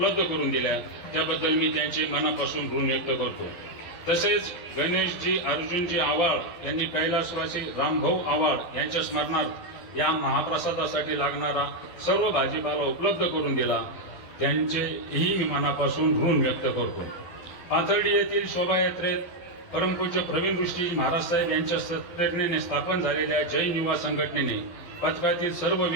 करून दिल्या, त्याबद्दल मी त्यांचे मनापासून ऋण व्यक्त करतो. तसेच गणेशजी अर्जुनजी आवाळ यांनी कैलासवासी रामभाऊ आवाळ यांच्या स्मरणार्थ या महाप्रसादासाठी लागणारा सर्व भाजीपाला उपलब्ध करून दिला, त्यांचेही मी मनापासून ऋण व्यक्त करतो. पाथर्डी येथील शोभायात्रेत परमपूज्य प्रवीण ऋषीजी महाराज साहेब यांच्या प्रेरणेने स्थापन झालेल्या जैन युवा संघटनेने पथकातील सर्व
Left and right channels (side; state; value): right; late; 12 ms